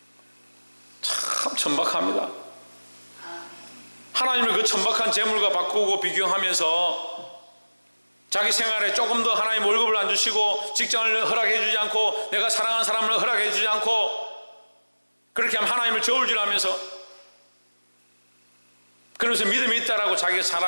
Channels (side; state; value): both; inverted; correlation -1.00